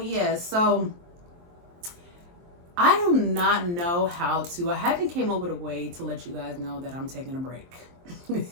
So I do not know how to. I haven't came up with a way to let you guys know that I'm taking a break.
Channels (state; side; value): late; left; 23 ms